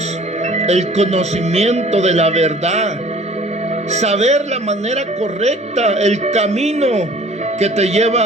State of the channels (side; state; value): both; normal; correlation 0.50